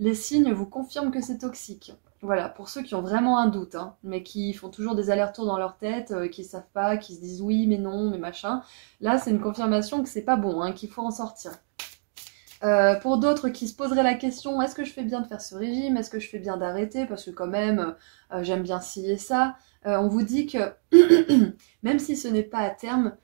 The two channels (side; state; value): left; silent; digital silence